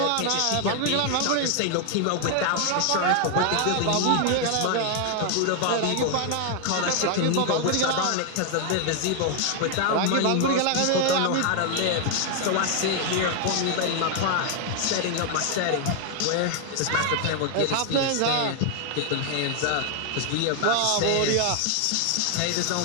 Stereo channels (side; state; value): both; different; correlation 0.00